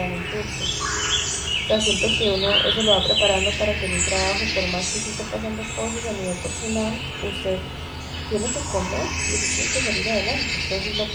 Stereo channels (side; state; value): both; identical; correlation 1.00